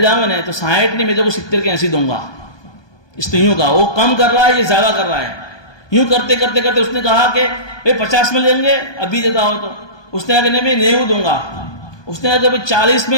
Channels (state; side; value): late; right; 1.2 ms